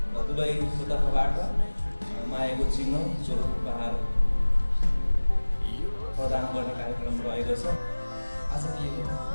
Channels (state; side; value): inverted; both; correlation -1.00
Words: दुलैको तर्फबाट मायाको चिन्ह स्वरूप उपहार प्रदान गर्ने कार्यक्रम रहेको छ। आजको यो